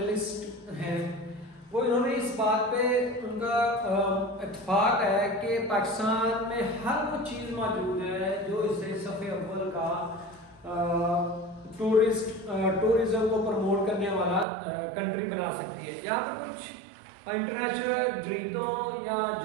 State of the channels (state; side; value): drops out; left; at 14.5 s